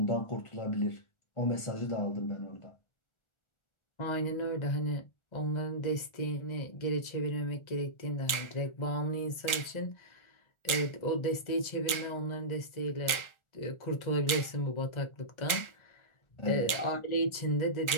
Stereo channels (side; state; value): right; late; 1.4 ms